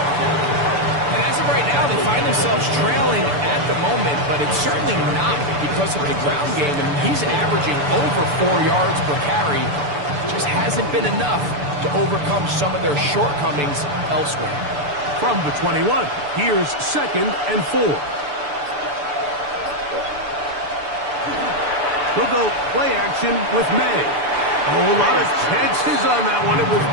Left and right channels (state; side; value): late; left; 6.9 ms